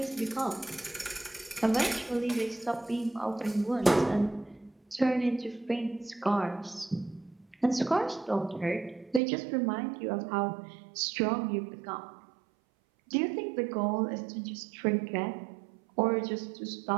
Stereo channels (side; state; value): left; drops out; at 9.2 s